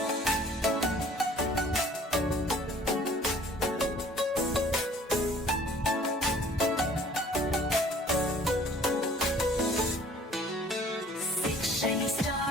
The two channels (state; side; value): normal; both; correlation 0.54